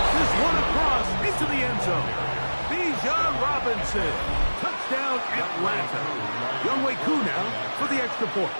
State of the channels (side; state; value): both; inverted; correlation -1.00